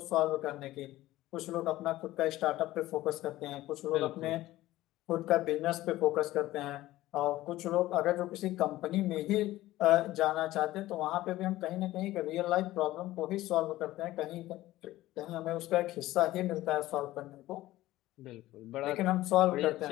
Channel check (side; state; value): right; quieter; 16.2 dB